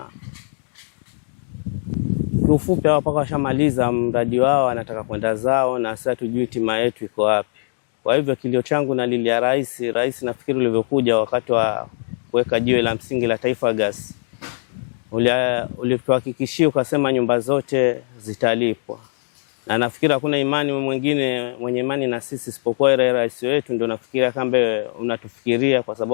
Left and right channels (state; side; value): silent; right; digital silence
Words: kiufupi hao paka washamaliza mradi wao, wanataka kwenda zao, na sasa tujui tima yetu iko wapi. Kwa hivyo kilio changu nalilia rais nafikiri ulivyokuja wakati wa kuweka jiwe la msingi la Taifa Gas, ulituhakikishia ukasema nyumba zote zitalipwa, na nafikiri hakuna imani mwingine mwenye imani na sisi isipokuwa rais wetu. Ndio nafikiria kambe unatufikiria, kwa